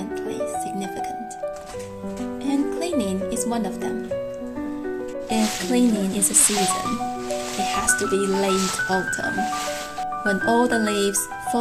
significant. And cleaning is one of them. If cleaning is a season, it has to be late autumn, when all the leaves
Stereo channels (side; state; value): both; identical; correlation 1.00